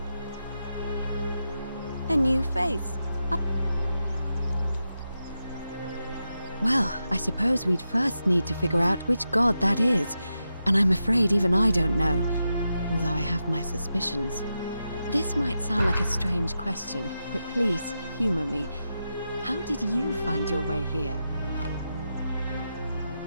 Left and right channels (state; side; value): inverted; both; correlation -0.88